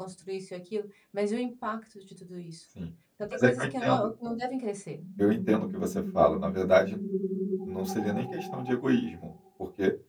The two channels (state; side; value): identical; both; correlation 1.00